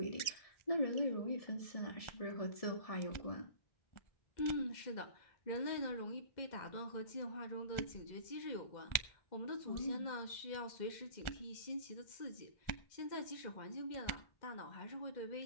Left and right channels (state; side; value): late; right; 1.4 ms